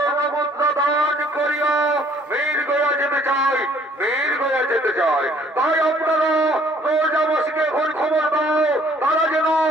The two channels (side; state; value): both; normal; correlation 0.59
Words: দান করিয়া মির্গয়া যেতে চাই, মির্গয়া যেতে চাই। তাই আপনারা প্রজাবাসীকে এখন খবর দাও, তারা যেন